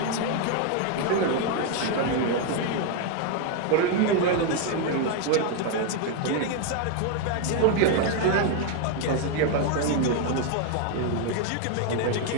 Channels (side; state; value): both; different; correlation 0.00